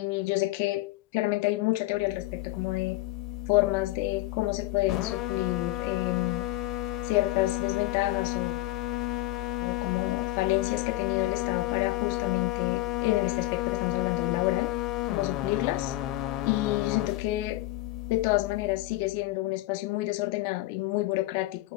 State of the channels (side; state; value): right; quieter; 17.7 dB